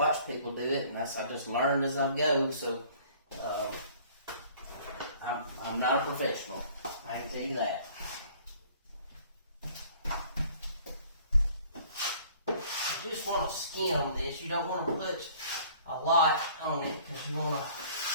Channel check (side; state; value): both; inverted; correlation -0.53